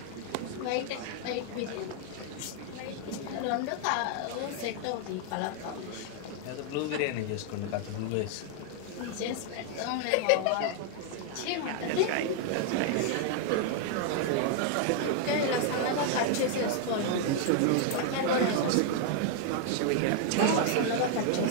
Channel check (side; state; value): both; different; correlation 0.00